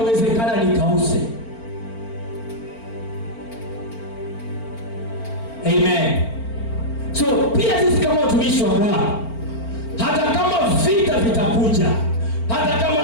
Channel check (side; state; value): right; late; 4.4 ms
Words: nikause. Amen. So pia sisi kama watumishi wa Bwana, hata kama vita vitakuja, hata kama